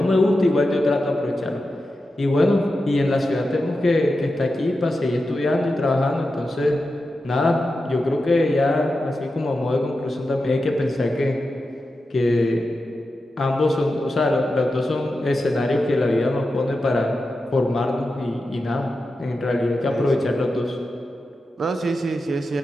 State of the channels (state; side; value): normal; both; correlation 0.90